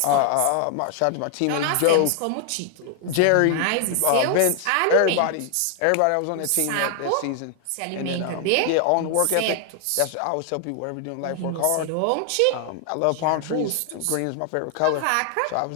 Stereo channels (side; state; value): both; different; correlation 0.00